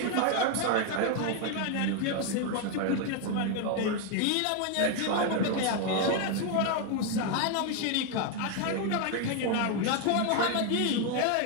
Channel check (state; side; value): different; both; correlation 0.01